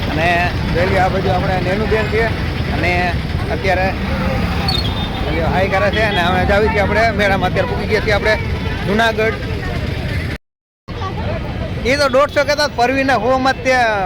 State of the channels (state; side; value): identical; both; correlation 1.00